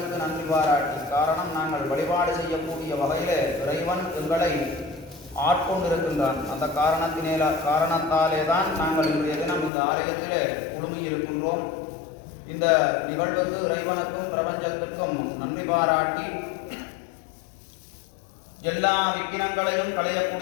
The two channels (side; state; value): right; drops out; at 9.7 s